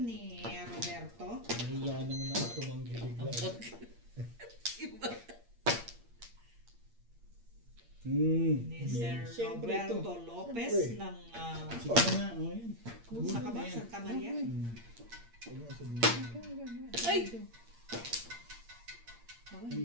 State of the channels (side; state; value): left; late; 8.6 ms